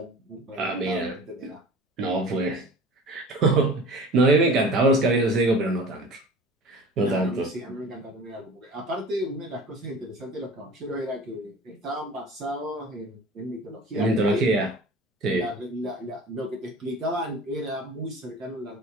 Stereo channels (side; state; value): both; normal; correlation 0.40